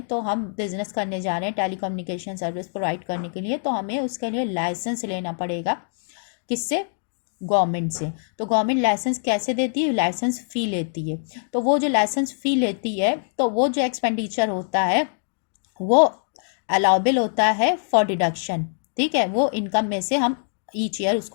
तो हम बिजनेस करने जा रहे हैं टेलीकम्युनिकेशन सर्विस प्रोवाइड करने के लिए, तो हमें उसके लिए लाइसेंस लेना पड़ेगा, किससे, गवर्नमेंट से। तो गवर्नमेंट लाइसेंस कैसे देती है, लाइसेंस फ़ी लेती है। तो वो जो लाइसेंस फ़ी लेती है, तो वो जो एक्सपेंडिचर होता है वो अलाउबल होता है फॉर डिडक्शन, ठीक है, वो इनकम में से हम ईच ईयर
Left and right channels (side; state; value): right; silent; digital silence